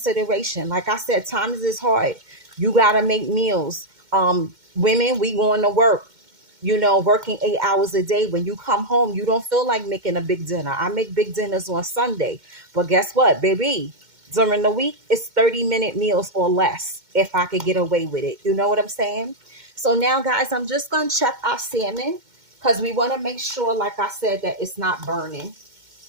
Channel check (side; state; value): left; late; 2.1 ms